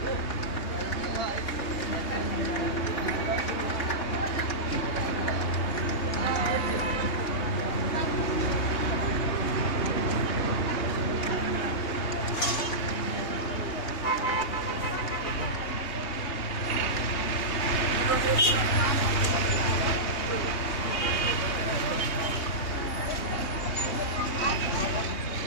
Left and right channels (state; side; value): late; right; 3.2 ms